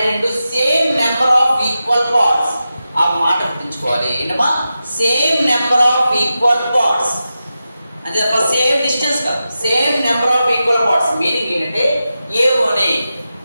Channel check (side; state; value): both; inverted; correlation -0.91